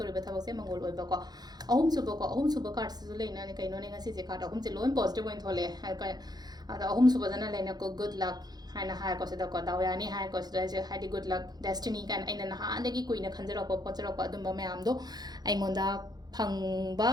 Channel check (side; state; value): left; late; 0.19 ms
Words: ba thabak se mangol oi ba ko ahum suba card su lai na ni kai no ne ngasi se card ahum se loan positive oin thole hai ka ada ahum suba jana lai na ko good luck haina hai ko se da ko daw ya ni hai ko se je hai di good luck destiny kan aina na ha andagi kuina khanjara ko pochara ko adum ba mayam do ai ngonda phangba